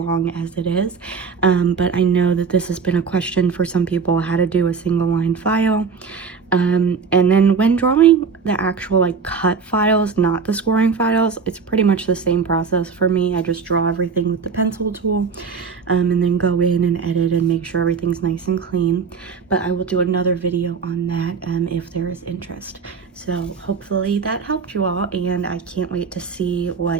as it is, but I know that this has been a question for some people, how to do a single line file. And then when drawing the actual like cut files, not the scoring files, it's pretty much the same process for me. I just draw everything with the pencil tool, and then go in and edit and make sure everything's nice and clean. But I will do another video on that if there is interest. So hopefully that helped you all, and I can't wait to see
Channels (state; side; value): quieter; left; 5.5 dB